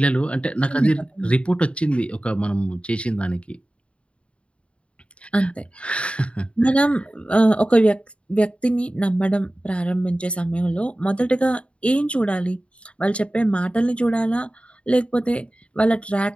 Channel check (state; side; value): late; right; 0.060 ms